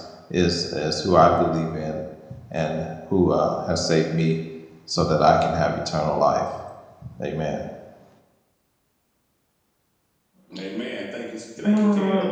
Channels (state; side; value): identical; both; correlation 1.00